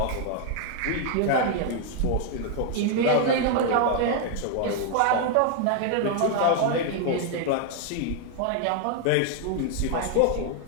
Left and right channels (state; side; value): different; both; correlation 0.00